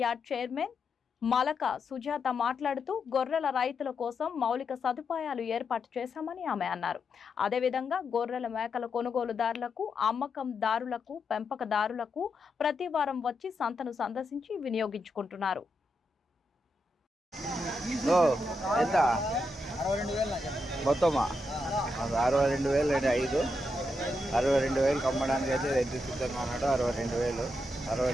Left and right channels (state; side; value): normal; both; correlation 0.83